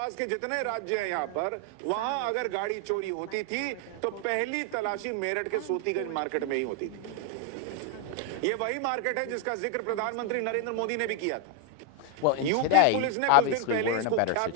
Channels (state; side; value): different; both; correlation 0.01